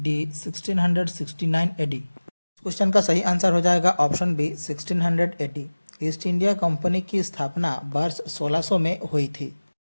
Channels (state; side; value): inverted; both; correlation -1.00